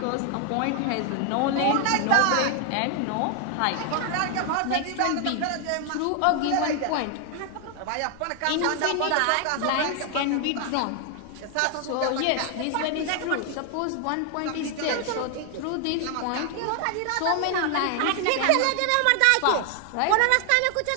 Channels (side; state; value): both; different; correlation 0.00